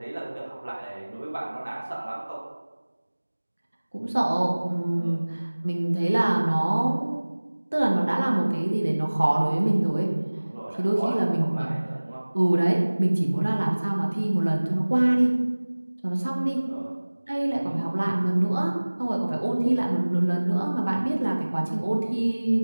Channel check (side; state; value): both; inverted; correlation -1.00